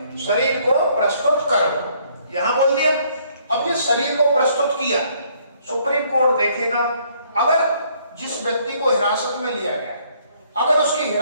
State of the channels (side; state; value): both; inverted; correlation -0.65